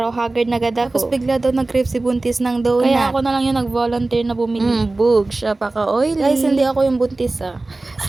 haggard na gada ko. Tapos bigla daw nag-crave si Buntis ng donut. Kaya ako na lang yung nag-volunteer na bumili. Bug, siya pa ka-oily. Guys, hindi ako yung buntis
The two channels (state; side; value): quieter; left; 3.1 dB